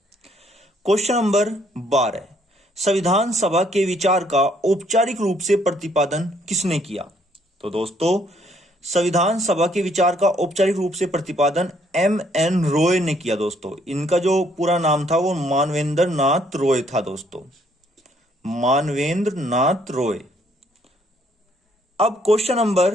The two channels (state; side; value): normal; both; correlation 0.67